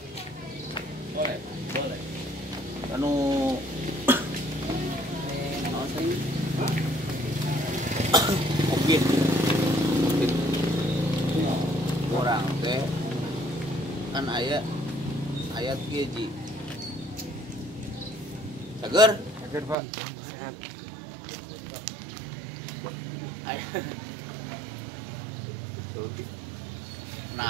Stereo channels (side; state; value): left; drops out; at 19.8 s